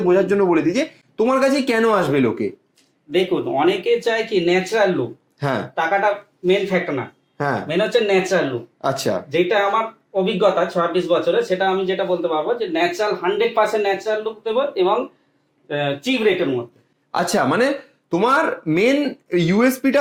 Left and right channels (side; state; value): both; identical; correlation 1.00